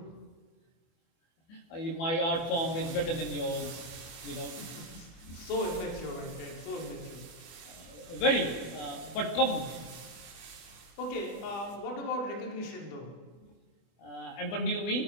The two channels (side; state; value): right; late; 24 ms